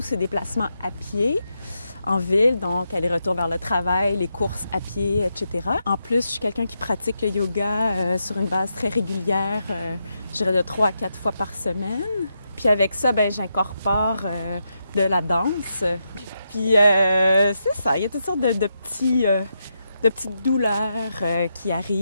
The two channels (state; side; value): inverted; both; correlation -0.84